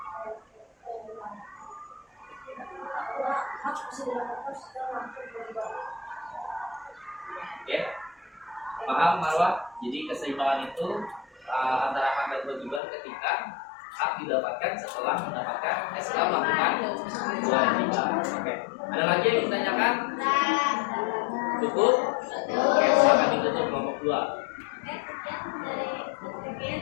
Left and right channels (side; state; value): right; drops out; at 12.8 s